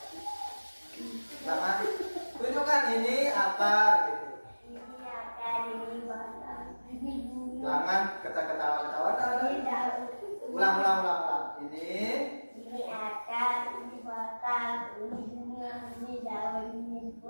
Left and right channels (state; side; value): inverted; both; correlation -1.00